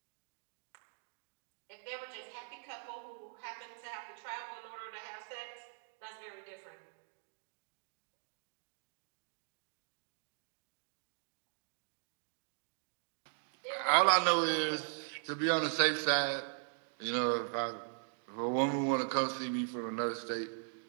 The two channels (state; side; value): silent; left; digital silence